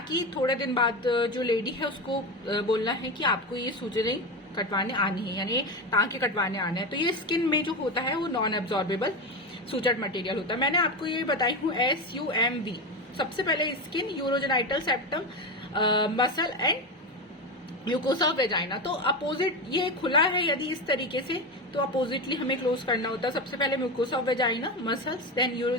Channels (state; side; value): normal; both; correlation 0.18